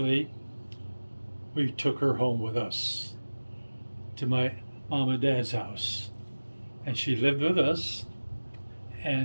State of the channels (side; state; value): both; inverted; correlation -1.00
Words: we took her home with us to my mom and dad's house, and she lived with us.